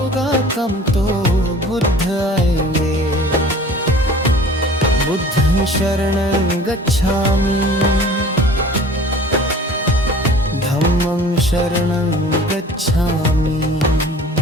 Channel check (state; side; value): normal; both; correlation 0.46